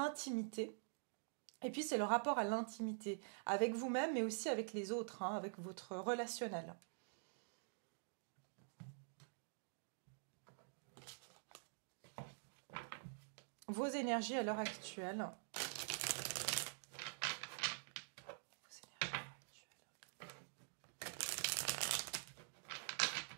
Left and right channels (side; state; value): left; silent; digital silence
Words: Et puis c'est le rapport à l'intimité, avec vous-même mais aussi avec les autres, hein, avec votre relationnel. Vos énergies à l'heure actuelle.